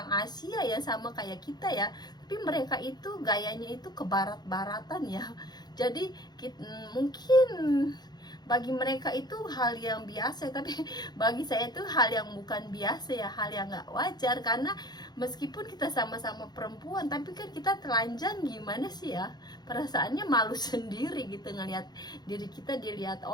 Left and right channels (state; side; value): late; right; 0.20 ms